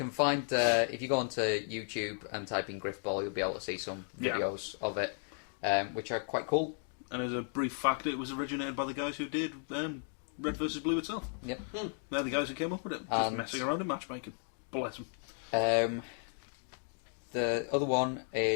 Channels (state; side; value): silent; right; 55 dB below the other